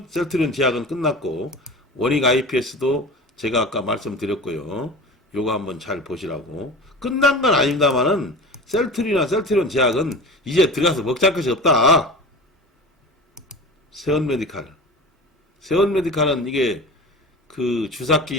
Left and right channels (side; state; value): both; normal; correlation 0.34